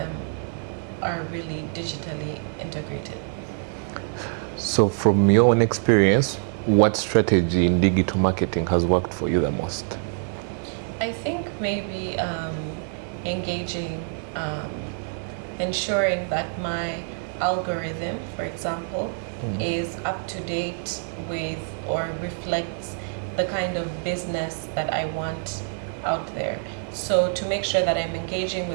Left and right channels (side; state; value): left; silent; 61 dB below the other